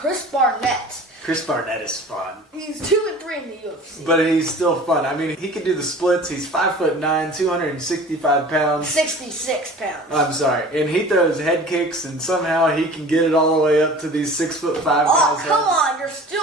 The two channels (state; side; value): normal; both; correlation 0.43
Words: Barnett. Chris Barnett is fun. He's 2-3 in the UFC. But he's still fun. I mean, he can do the splits. He's 5'9", 265 pounds. 66 pounds. I'm sorry. And he throws head kicks, and somehow he can get it all the way up to these 6'5" guys' Oh, come heads. on. You're